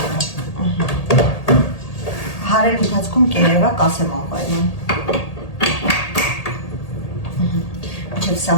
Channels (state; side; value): late; right; 1.8 ms